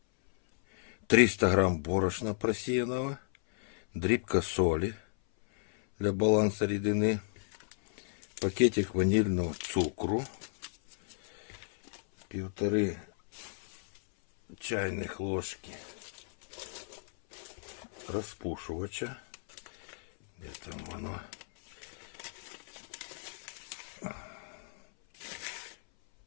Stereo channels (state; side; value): silent; right; 55 dB below the other